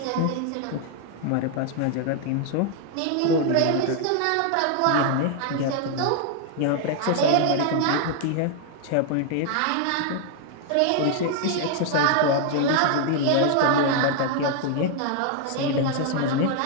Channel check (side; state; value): both; different; correlation 0.00